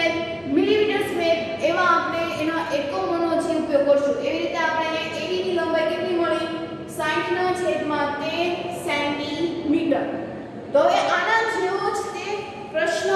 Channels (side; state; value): both; identical; correlation 1.00